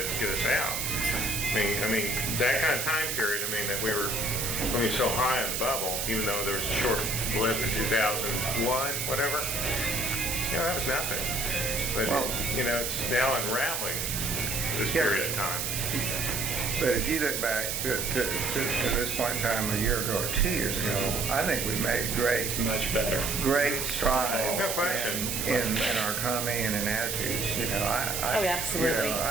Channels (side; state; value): right; noise; hiss, 1 dB below the sound